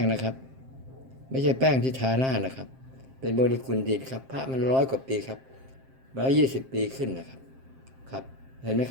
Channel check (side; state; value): left; late; 7.6 ms